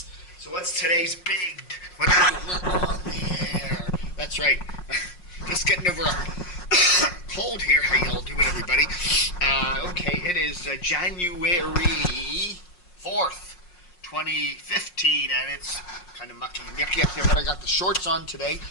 So what's today's what on the air? That's right, just getting over a cold here. How y'all doing, everybody? Okay, it is January 4th, 2015, and it's kind of mucky and yucky up there, but I got the shorts on today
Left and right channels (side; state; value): right; late; 5.6 ms